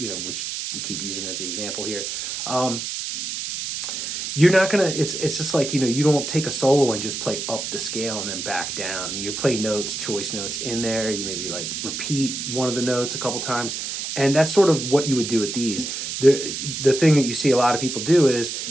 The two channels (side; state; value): right; noise; hiss, 5 dB below the sound